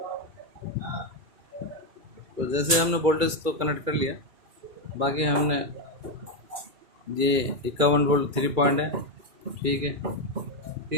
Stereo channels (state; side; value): late; left; 2.3 ms